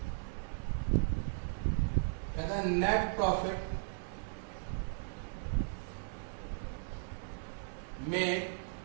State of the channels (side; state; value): left; silent; 53 dB below the other